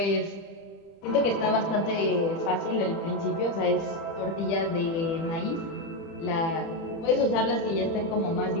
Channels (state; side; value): late; right; 30 ms